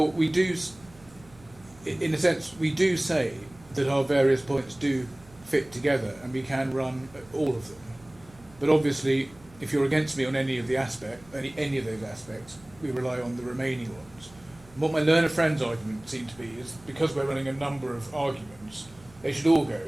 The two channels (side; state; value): right; noise; hum, 24 dB below the sound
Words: we do, in a sense, we do say that our various points do fit together and we can run all of them. But obviously, if you're against me on any of those aspects, we rely on the remaining ones. And what my learner friend's argument seemed to be is because we're running a number of arguments, they should all go